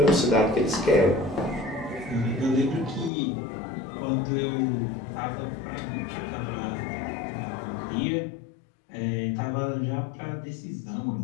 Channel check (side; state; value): right; drops out; at 3.1 s